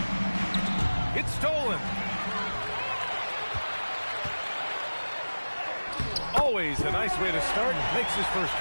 It's stolen. Always a nice way to start. Makes his first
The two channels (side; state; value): both; inverted; correlation -1.00